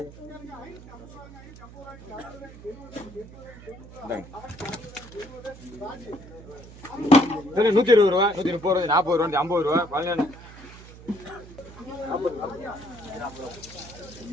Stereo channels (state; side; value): noise; right; hum, 18 dB below the sound